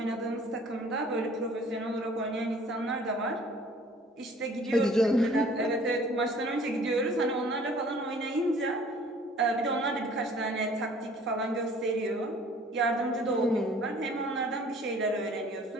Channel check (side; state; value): both; normal; correlation 0.53